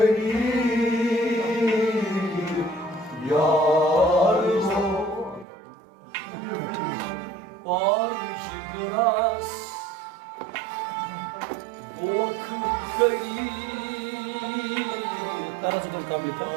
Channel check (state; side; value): drops out; left; at 5.5 s